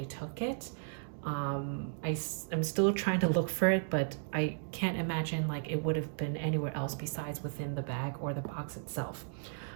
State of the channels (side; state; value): left; silent; digital silence